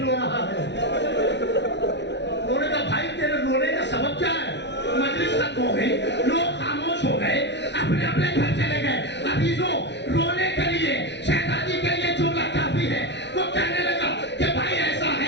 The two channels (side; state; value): right; late; 0.51 ms